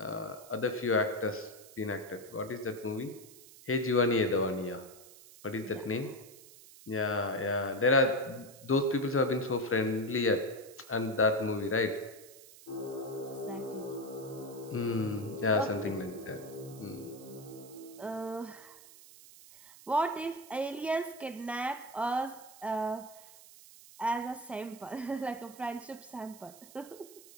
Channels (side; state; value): right; noise; hiss, 20 dB below the sound